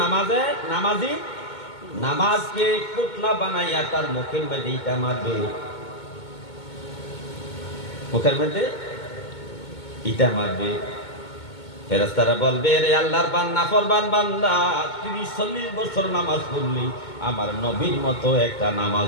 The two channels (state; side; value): late; right; 2.2 ms